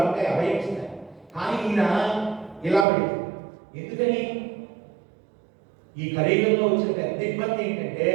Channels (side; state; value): left; drops out; at 2.9 s